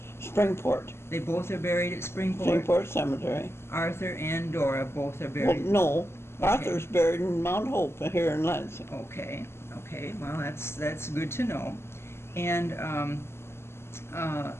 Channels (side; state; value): right; late; 0.12 ms